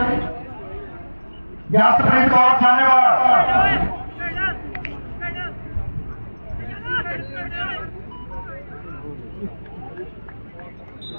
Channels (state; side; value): inverted; both; correlation -1.00